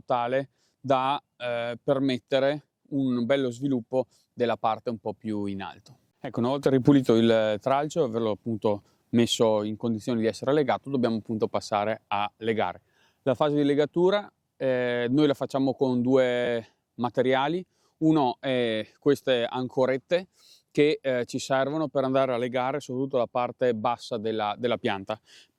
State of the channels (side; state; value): both; identical; correlation 1.00